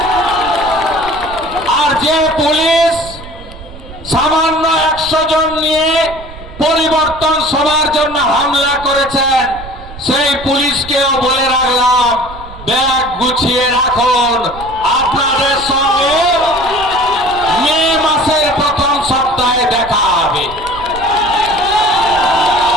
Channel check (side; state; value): right; noise; rumble, 16 dB below the sound